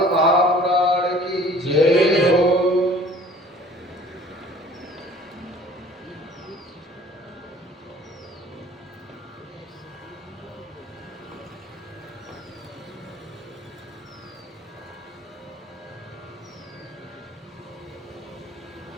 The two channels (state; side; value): normal; both; correlation 0.50